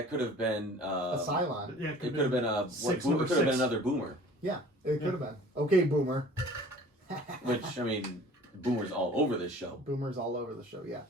have been a Cylon. Yeah, it could have been it could have been another Boomer. Yeah, it could have been. Okay, Boomer. Which, I mean, Boomer's all over this show. Boomer's all over the show, yeah.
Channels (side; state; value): both; normal; correlation 0.47